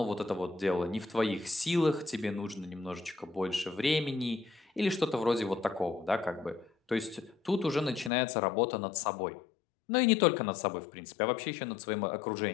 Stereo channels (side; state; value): right; drops out; at 8.1 s